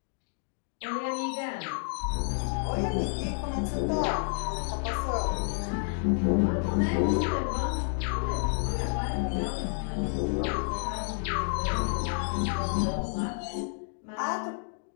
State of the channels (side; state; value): right; silent; 58 dB below the other